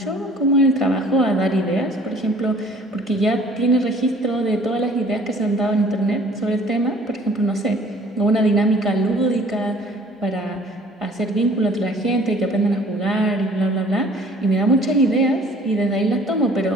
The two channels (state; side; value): normal; both; correlation 0.53